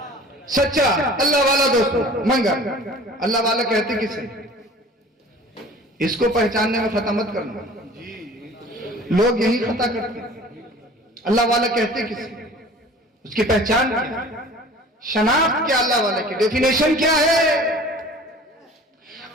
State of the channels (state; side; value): normal; both; correlation 0.45